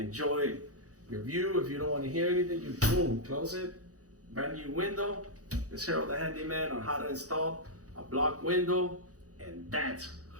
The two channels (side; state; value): left; late; 0.66 ms